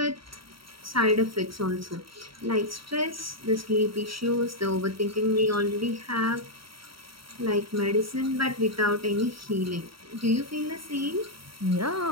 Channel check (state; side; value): late; left; 0.74 ms